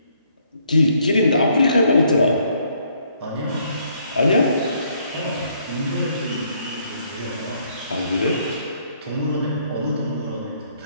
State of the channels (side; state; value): both; inverted; correlation -0.68